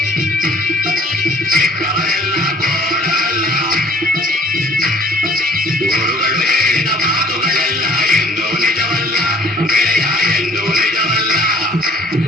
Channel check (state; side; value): normal; both; correlation 0.52